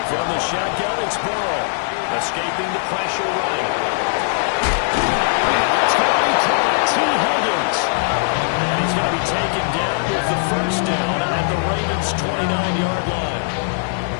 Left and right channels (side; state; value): right; silent; 63 dB below the other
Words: From the shotgun, it's Burrow. Escaping the pressure right. It's going to be caught. T. Higgins. And he's going to be taken down with the first down at the Ravens' 29-yard line.